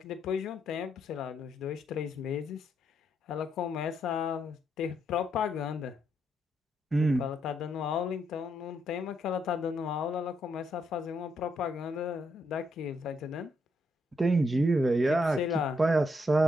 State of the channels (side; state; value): both; normal; correlation 0.77